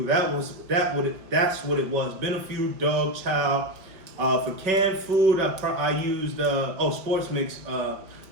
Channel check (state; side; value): late; left; 5.0 ms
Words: That's what it was. Beneful dog chow. For canned food, I used sports mix